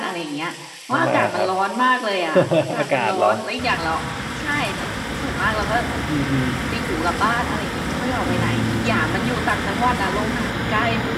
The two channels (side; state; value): both; identical; correlation 1.00